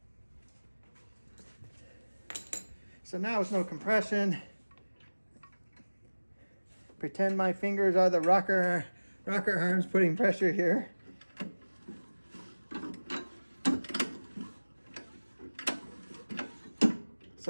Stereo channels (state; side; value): inverted; both; correlation -1.00